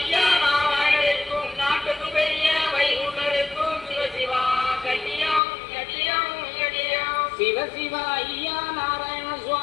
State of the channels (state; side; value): drops out; right; at 5.4 s